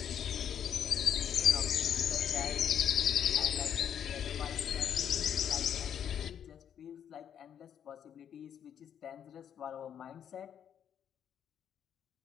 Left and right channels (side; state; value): right; quieter; 9.0 dB